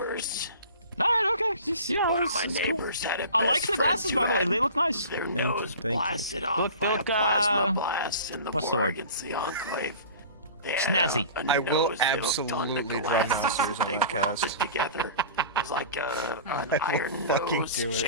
All right, okay. Just, you know, One of my it's cool. neighbors had a I like best the glasses, friend by the who way. had They look nice. Their Thank nose you. blasted off Look, by a look, plasma blast in the what's the war word? against the Enclave. They Snazzy. had a I will nose that looked on the absolutely draw glasses masters that on they the welded cast. together. It was like an I will iron fucking nose do it.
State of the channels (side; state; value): both; inverted; correlation -0.39